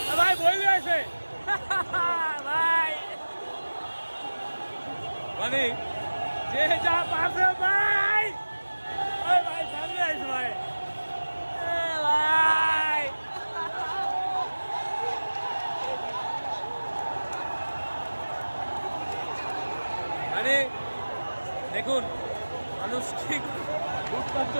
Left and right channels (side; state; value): both; inverted; correlation -1.00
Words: ভাই বই আছে ভাই মানে যে যা পারছে ভাই ওই ভাই সামনে আছে ভাই ভাই মানে দেখুন মানুষ ঠিক লুটপাট